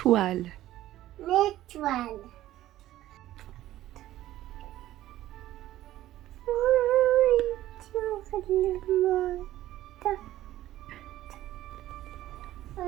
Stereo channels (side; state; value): left; quieter; 14.3 dB